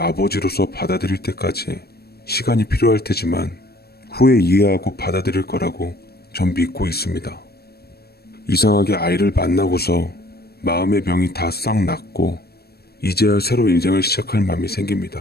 아버지로서 받아들일 때까지 시간이 필요할 테지만 후에 이해하고 받아들일 거라고 전 믿고 있습니다. 이상하게 아이를 만나고서 마음의 병이 다 싹 났고 이제야 새로 인생을 시작할 마음이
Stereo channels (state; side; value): late; right; 0.46 ms